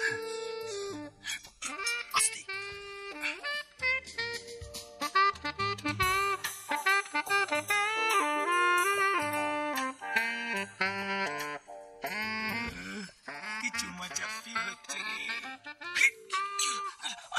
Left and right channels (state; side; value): identical; both; correlation 1.00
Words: কিছু মজাপি হচ্ছে